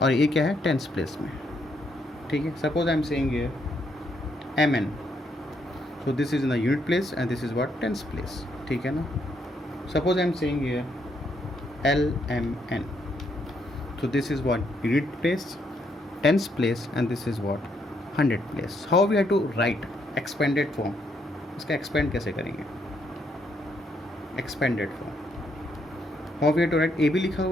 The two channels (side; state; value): both; normal; correlation 0.74